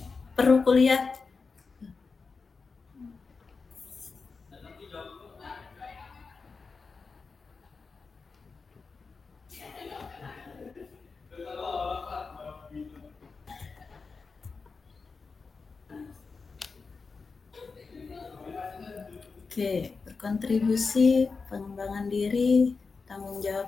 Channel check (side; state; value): right; quieter; 4.6 dB